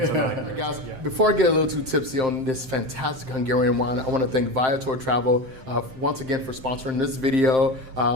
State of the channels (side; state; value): left; late; 7.6 ms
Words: a nightmare. Guys, before I get a little too tipsy on this fantastic Hungarian wine, I want to thank Viator Travel once again for sponsoring this video,